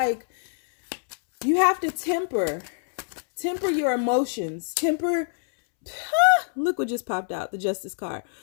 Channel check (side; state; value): right; silent; 62 dB below the other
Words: you have to temper your emotions, look what just popped out, the Justice card.